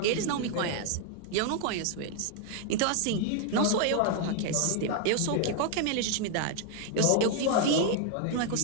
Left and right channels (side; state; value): both; different; correlation 0.00